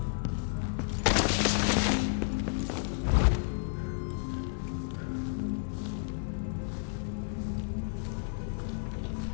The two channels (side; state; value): right; silent; digital silence